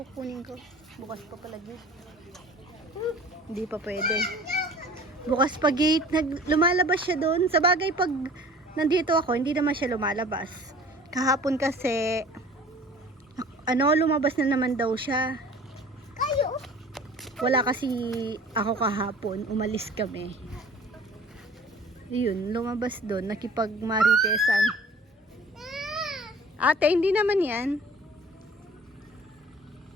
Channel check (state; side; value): normal; both; correlation 0.46